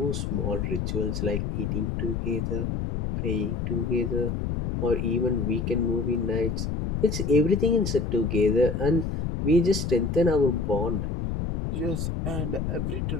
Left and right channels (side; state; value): left; noise; rumble, 2 dB below the sound